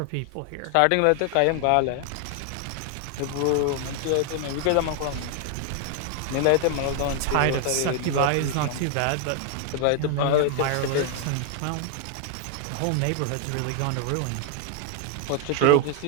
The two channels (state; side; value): different; both; correlation 0.00